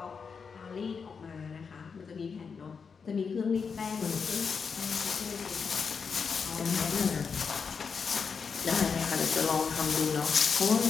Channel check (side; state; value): right; quieter; 5.7 dB